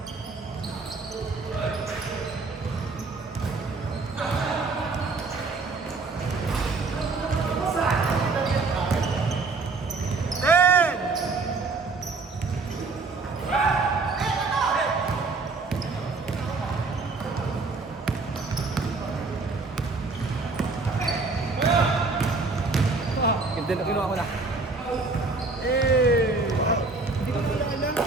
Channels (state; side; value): quieter; left; 3.9 dB